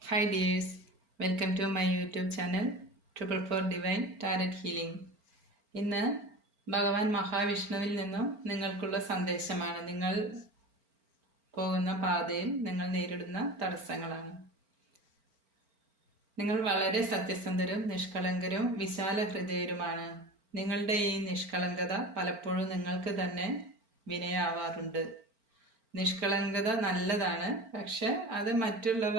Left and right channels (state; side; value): late; left; 4.4 ms